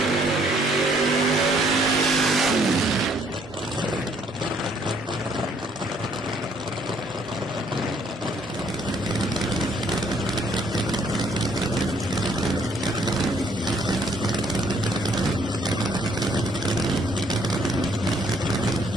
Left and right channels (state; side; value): normal; both; correlation 0.65